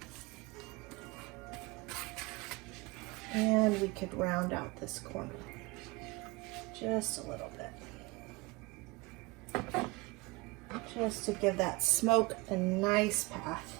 And we could round out this corner just a little bit, just to give that smoke a nice path.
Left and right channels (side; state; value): left; quieter; 24.4 dB